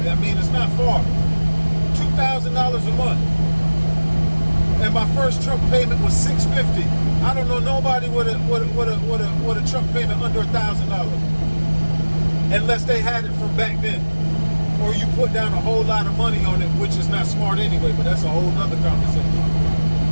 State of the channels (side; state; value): both; inverted; correlation -1.00